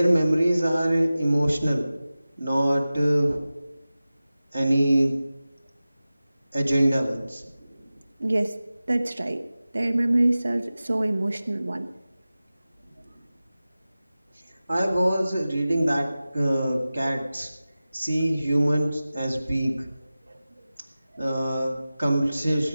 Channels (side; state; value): both; inverted; correlation -0.96